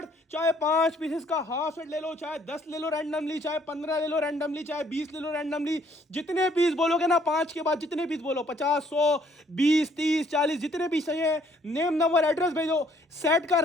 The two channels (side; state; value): both; normal; correlation 0.64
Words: चाहे 5 पीसेस का हाफ सेट ले लो, चाहे 10 ले लो रैंडमली, चाहे 15 ले लो रैंडमली, चाहे 20 ले लो रैंडमली। जितने पीस बोलोगे ना 5 के बाद जितने पीस बोलो 50 100 20 30 40 जितने पीस चाहिए, नेम नंबर एड्रेस भेजो, सेट का